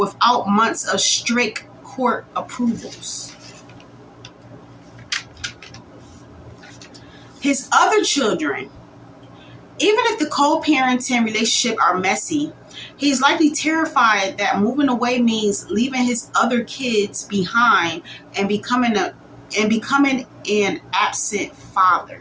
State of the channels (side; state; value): both; identical; correlation 1.00